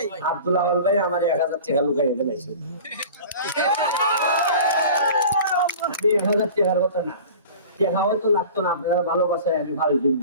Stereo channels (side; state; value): both; inverted; correlation -0.40